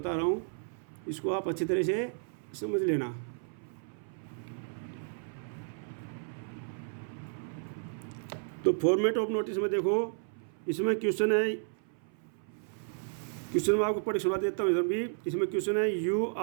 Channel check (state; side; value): silent; left; 56 dB below the other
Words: रहा हूँ, इसको आप अच्छी तरह से समझ लेना। तो फॉर्मेट ऑफ नोटिस में देखो, इसमें क्वेश्चन है, क्वेश्चन में आपको पढ़ सुना देता हूँ इधर भी। इसमें क्वेश्चन है you